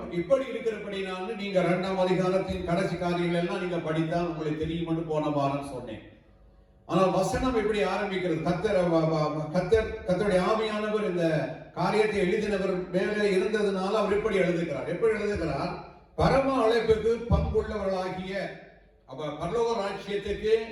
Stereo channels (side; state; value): both; identical; correlation 1.00